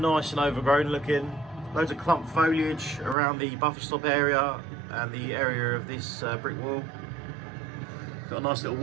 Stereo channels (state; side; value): drops out; left; at 3.2 s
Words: and overgrown looking. Loads of clump foliage around the buffer stop area and the area of this brick wall. Got a nice little